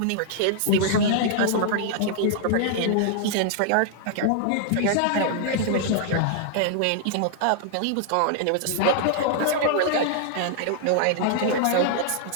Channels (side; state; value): both; different; correlation -0.01